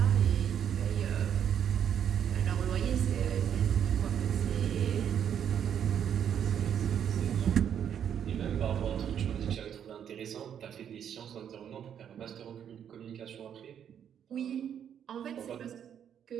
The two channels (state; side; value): quieter; left; 8.9 dB